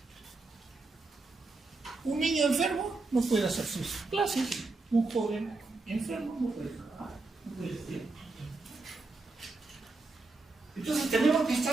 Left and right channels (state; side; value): quieter; left; 3.6 dB